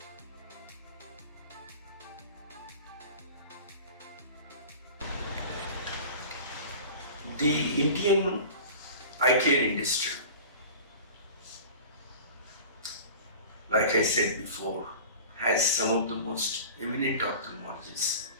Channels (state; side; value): inverted; both; correlation -0.39